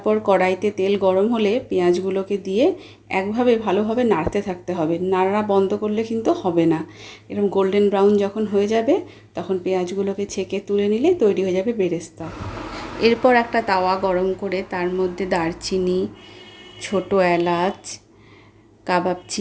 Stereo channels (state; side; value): identical; both; correlation 1.00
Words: কড়াইতে তেল গরম হলে পেঁয়াজগুলোকে দিয়ে একভাবে ভালোভাবে নাড়তে থাকতে হবে। নাড়া বন্ধ করলে কিন্তু হবে না। এরকম গোল্ডেন ব্রাউন যখন হয়ে যাবে তখন পেঁয়াজগুলোকে ছেঁকে তুলে নিলে তৈরি হয়ে যাবে বেরেস্তা। এরপর একটা তাওয়া গরম করে তার মধ্যে দারচিনি, ছোটো এলাচ, কাবাব